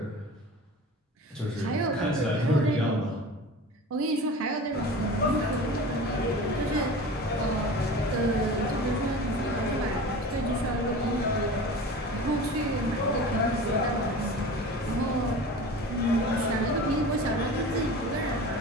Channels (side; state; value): both; normal; correlation 0.36